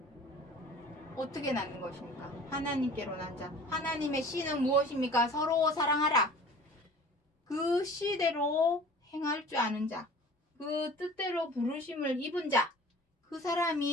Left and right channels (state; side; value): normal; both; correlation 0.44